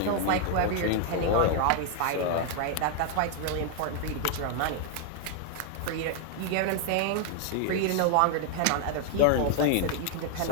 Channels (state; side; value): different; both; correlation 0.00